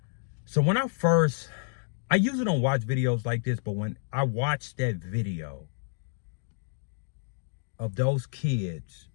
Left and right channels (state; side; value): silent; right; digital silence